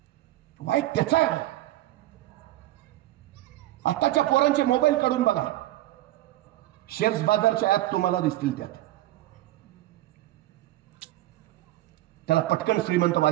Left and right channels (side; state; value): left; quieter; 15.7 dB